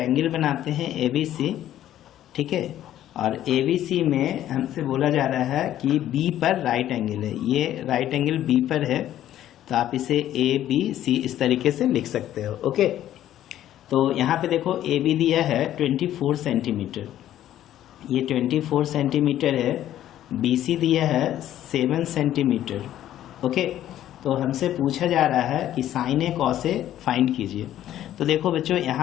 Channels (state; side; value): quieter; right; 12.3 dB